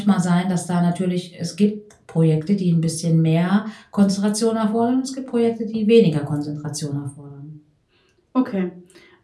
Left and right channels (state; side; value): identical; both; correlation 1.00